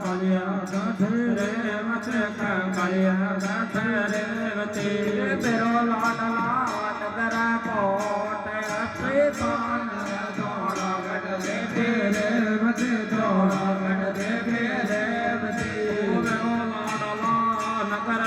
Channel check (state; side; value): identical; both; correlation 1.00